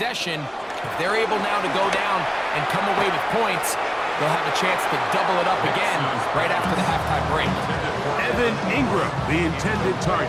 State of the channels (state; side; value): identical; both; correlation 1.00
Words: If they're able now to go down and come away with points, they'll have a chance to double it up again right after the halftime break. Evan Ingram, the intended target.